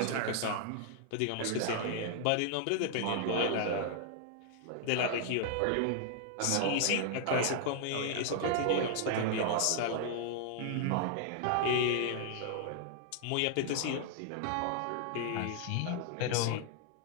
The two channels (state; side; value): different; both; correlation -0.01